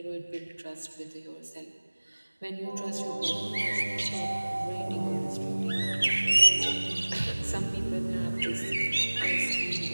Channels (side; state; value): both; inverted; correlation -1.00